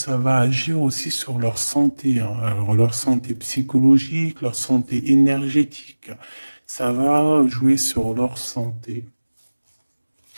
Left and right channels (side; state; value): both; inverted; correlation -1.00